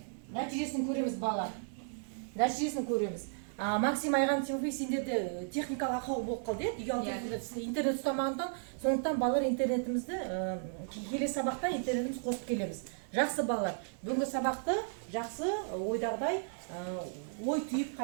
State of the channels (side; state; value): left; silent; digital silence